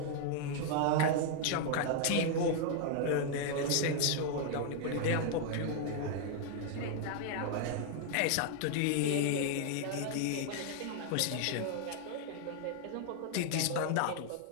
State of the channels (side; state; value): both; different; correlation 0.00